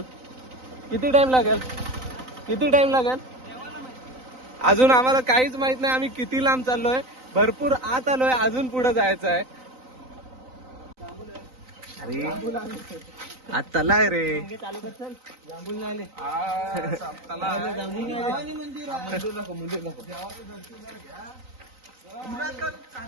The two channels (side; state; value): left; late; 3.9 ms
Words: लागेल? अजून आम्हाला काहीच माहित नाही. आम्ही किती लांब चाललोय. भरपूर आत आलोय. अजून पुढे जायचं आहे. अरे आज तला आहे रे.